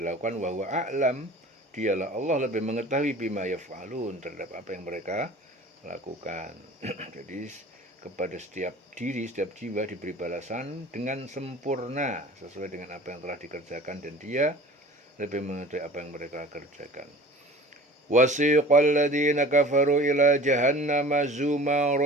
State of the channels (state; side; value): normal; both; correlation 0.43